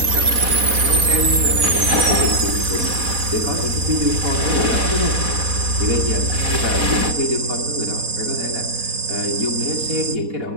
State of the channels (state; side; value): late; left; 4.1 ms